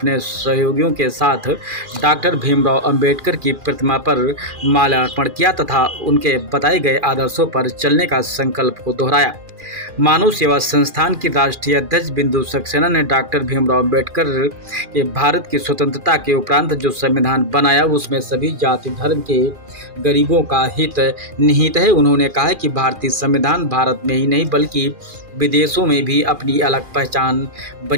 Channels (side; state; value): left; late; 2.4 ms